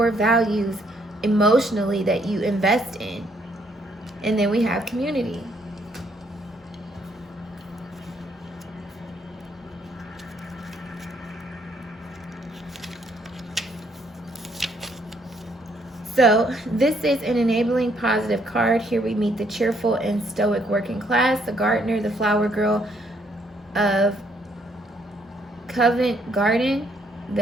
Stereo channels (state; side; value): normal; both; correlation 0.70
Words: values emotionally that you invest in. And then we have community. So this is an enabling positive card. Here we meet the cheerful and stoic working class, the gardener, the flower girl of Covent Garden,